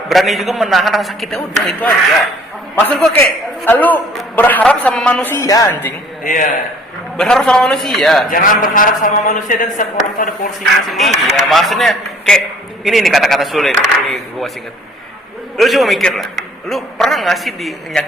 berani juga menahan rasa sakitnya, udah itu aja. Maksud gua kayak lu berharap sama manusia, anjing. Iya. Berharap sama manusia. Jangan berharap sama manusia, dan setiap orang itu ada porsinya masing-masing. Iya, maksudnya kayak ini nih kata-kata sulit. Ini gua masih inget. Lu coba mikir lah. Lu pernah nggak sih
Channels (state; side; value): normal; both; correlation 0.56